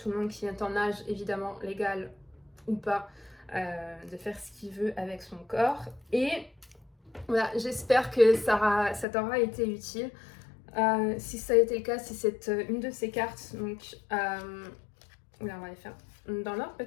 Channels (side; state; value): right; drops out; at 9.1 s